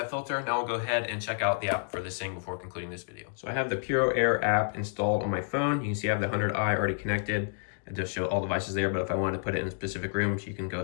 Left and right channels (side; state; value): right; silent; digital silence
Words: filter. Now we'll go ahead and check out the app for this thing before concluding this video. So I have the PuroAir app installed on my phone. You can see I have the 100i already connected. It does show all devices there, but if I wanted to put it in specific rooms, you can go